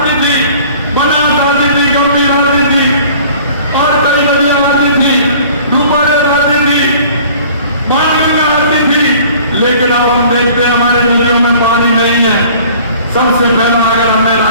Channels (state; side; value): inverted; both; correlation -0.50